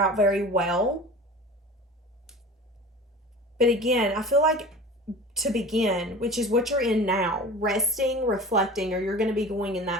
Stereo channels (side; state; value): both; normal; correlation 0.37